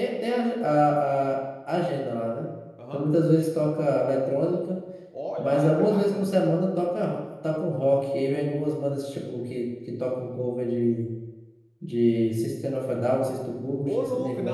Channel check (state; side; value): identical; both; correlation 1.00